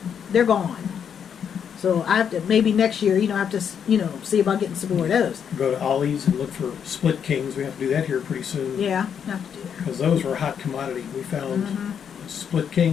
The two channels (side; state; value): right; quieter; 7.8 dB